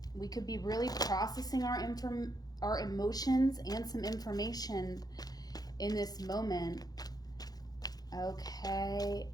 We could be really processing our emotions and some information in this moment. Okay.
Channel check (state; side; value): late; right; 0.19 ms